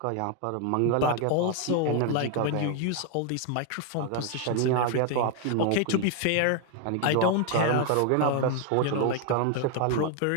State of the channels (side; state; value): both; different; correlation 0.00